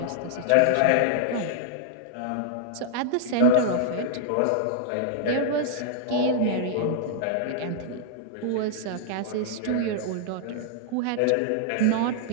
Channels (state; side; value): different; both; correlation -0.01